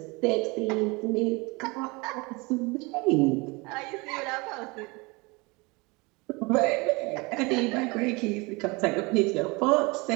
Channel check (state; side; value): quieter; left; 26.2 dB